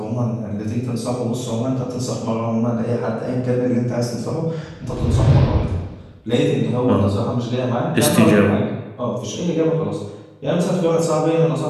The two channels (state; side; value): identical; both; correlation 1.00